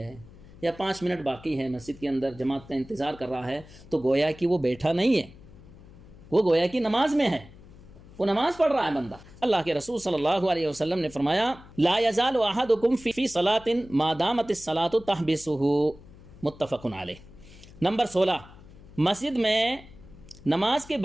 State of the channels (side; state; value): left; noise; hum, 21 dB below the sound